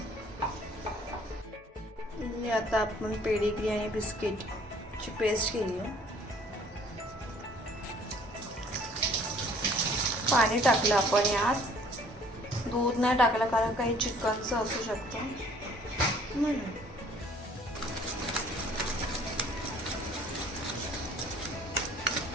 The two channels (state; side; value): normal; both; correlation 0.56